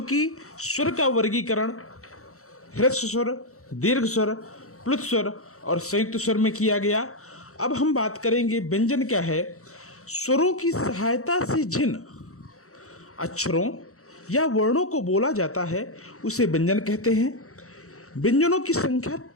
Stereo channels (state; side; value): late; right; 0.64 ms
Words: कि स्वर का वर्गीकरण ह्रस्व स्वर, दीर्घ स्वर, प्लुत स्वर और संयुक्त स्वर में किया गया। अब हम बात करेंगे व्यंजन क्या है। स्वरों की सहायता से जिन अक्षरों या वर्णों को बोला जाता है उसे व्यंजन कहते हैं। व्यंजनों की संख्या